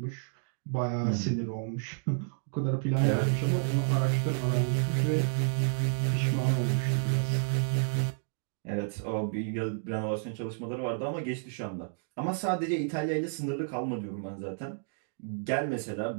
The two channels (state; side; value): silent; left; digital silence